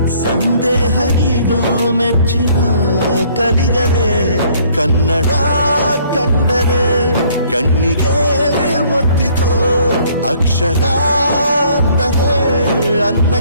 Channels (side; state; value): both; inverted; correlation -0.60